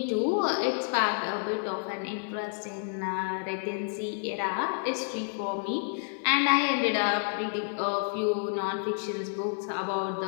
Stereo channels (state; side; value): silent; right; digital silence